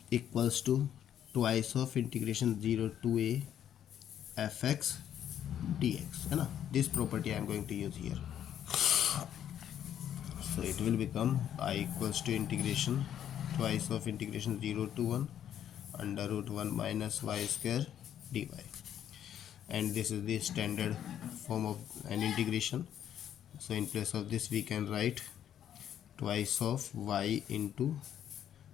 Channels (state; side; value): quieter; right; 10.1 dB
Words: equals to twice of integration 0 to a fx dx, है ना. This property I am going to use here. So it will become I equals to integration twice of integration 0 to 1 under root 1 minus y square dy, and this is the standard form of an integration. So in place of this we can write twice of y into